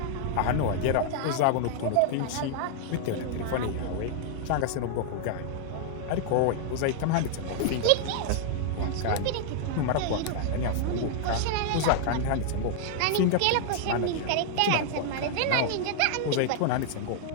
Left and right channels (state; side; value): different; both; correlation 0.00